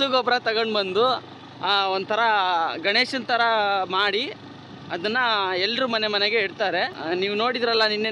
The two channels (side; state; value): both; identical; correlation 1.00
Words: ಗೊಬ್ಬರ ತಗೊಂಡು ಬಂದು ಒಂಥರ ಗಣೇಶನ ಥರ ಮಾಡಿ ಅದನ್ನು ಎಲ್ಲರೂ ಮನೆಗೆ ಇಡ್ತಾರೆ. ನೀವು ನೋಡಿದ್ರಲ್ಲ